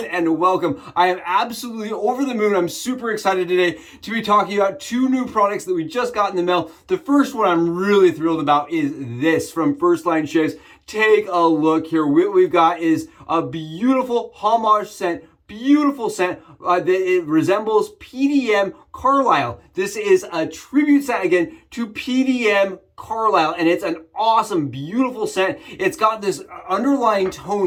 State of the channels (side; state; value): both; identical; correlation 1.00